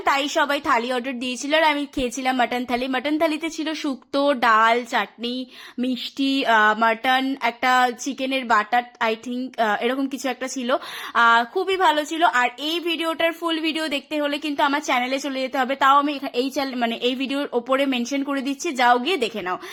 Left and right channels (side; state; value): both; identical; correlation 1.00